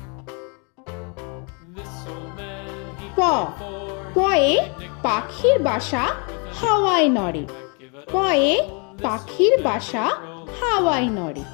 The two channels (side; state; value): right; quieter; 35.4 dB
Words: This old man, he প, played four. পয়ে পাখির বাসা হাওয়ায় নড়ে। পয়ে পাখির বাসা হাওয়ায় নড়ে।